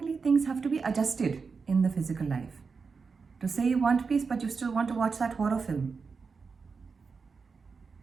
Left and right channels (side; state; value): left; quieter; 5.0 dB